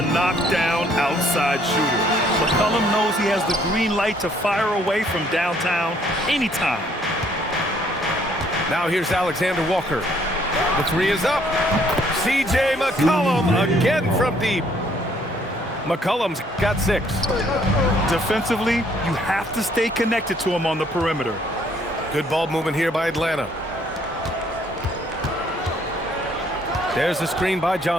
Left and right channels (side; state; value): both; normal; correlation 0.64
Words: knockdown outside shooter. McCollum knows he has the green light to fire away from downtown anytime. Now here's Alexander Walker. The three is up. C.J. McCollum again from deep. McCollum's got 6. Defensively, you have to stay connected to him on the perimeter. Good ball movement here by Atlanta. There's the screen by